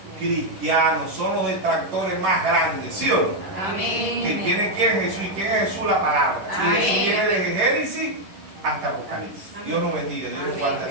cristianos, son los detractores más grandes, ¿sí o no? Amén. Que tiene quién Jesús, y quién es Jesús, la palabra. Y Amén. Jesús viene desde Génesis hasta Apocalipsis. Dios nos bendiga, Dios nos guarde a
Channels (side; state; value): left; late; 11 ms